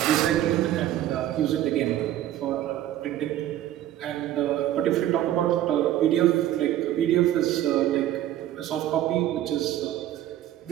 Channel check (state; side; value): quieter; left; 12.8 dB